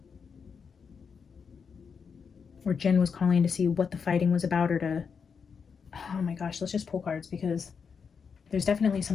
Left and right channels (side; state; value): right; quieter; 6.1 dB